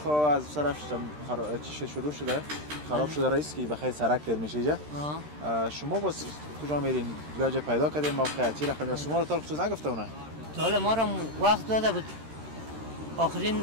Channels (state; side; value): late; left; 13 ms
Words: از طرف چی شروع شده؟ خراب شده رئیس که بخیر سرک در میشه اینجا. شما باز کجا میرین؟ جای پیدا کردین موقع چی رقمی شما رو تا خصوص نگفته اونه؟ تا حالا ما رو وقت داده بود. آخرین